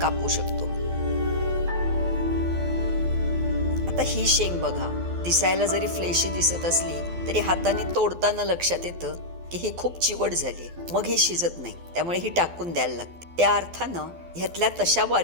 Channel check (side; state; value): left; late; 12 ms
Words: शकतो. आता ही शेंग बघा, दिसायला जरी फ्लेशी दिसत असली तरी हाताने तोडताना लक्षात येतं की ही खूप चिवट झाली, मग ही शिजत नाही, त्यामुळे ही टाकून द्यायला लागते. त्या अर्थानं ह्यातल्या तशा